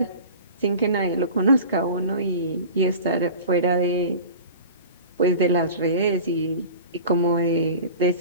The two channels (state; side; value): inverted; both; correlation -0.38